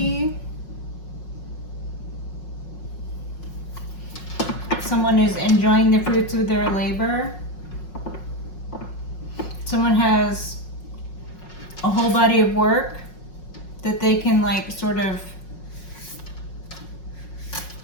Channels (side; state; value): right; late; 5.5 ms